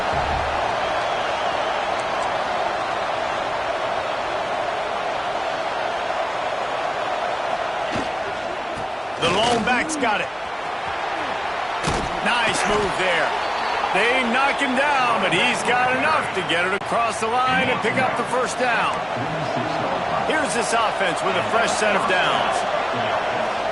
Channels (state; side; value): identical; both; correlation 1.00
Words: The lone back's got it. Nice move there. They knock him down, but he's got enough to get it across the line and pick up the first down. Here's this offense with a fresh set of downs.